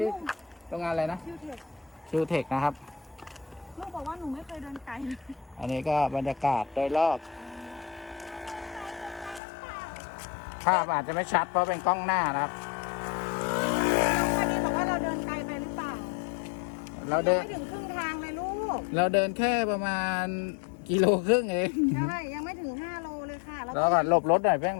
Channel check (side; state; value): right; drops out; at 9.4 s